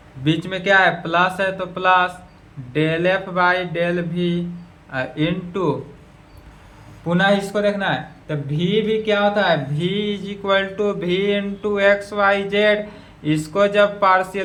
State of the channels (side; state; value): both; identical; correlation 1.00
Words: बीच में क्या है plus है तो plus del f by del v into, पुनः इसको देखना है तो v भी क्या होता है v is equal to v into x Y z. इसको जब